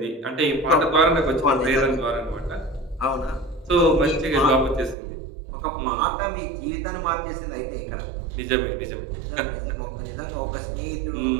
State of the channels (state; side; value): drops out; left; at 5.0 s